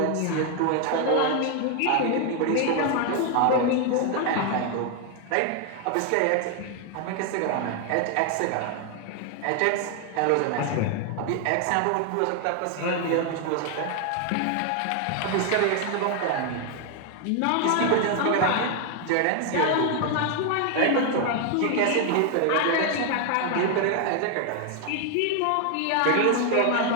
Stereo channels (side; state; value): both; different; correlation 0.00